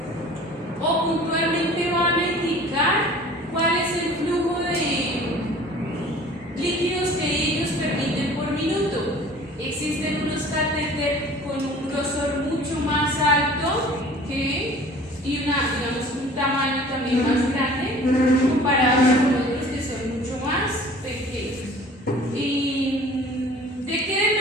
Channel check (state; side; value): normal; both; correlation 0.47